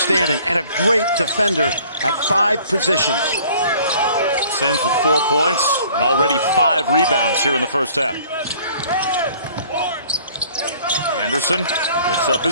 and a great defender at 5 positions. Sims with 4 points and already 5 rebounds here in the first half. Anderson picks up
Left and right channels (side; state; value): both; inverted; correlation -0.54